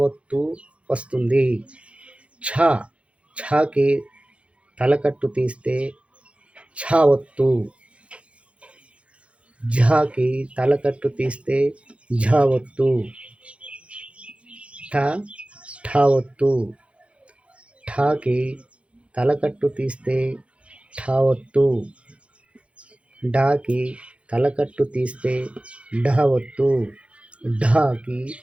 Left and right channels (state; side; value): late; left; 0.061 ms